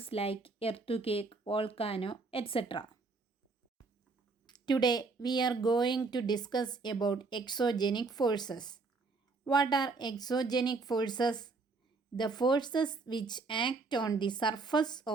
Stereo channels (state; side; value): quieter; left; 4.0 dB